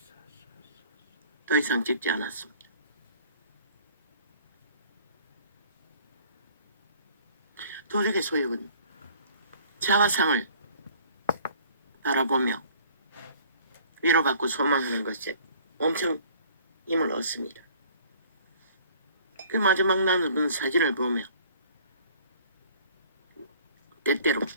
더 이상 찍지 않았습니다. 도적의 소욕은 자화상을 바라보며 위로받고 소망하는 것에 엄청 힘을 얻습니다. 그 마지막 나누는 사진을 보며 때때로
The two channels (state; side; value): inverted; both; correlation -0.53